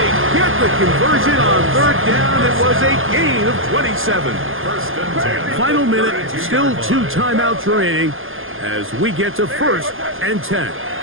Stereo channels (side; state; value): left; late; 0.59 ms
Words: get the conversion on third down. It was a gain of 27. Final minute, still 2 timeouts remaining as we get to 1st and 10.